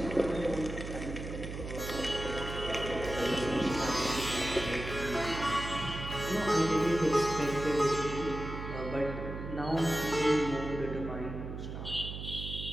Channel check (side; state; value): right; noise; hum, 7 dB below the sound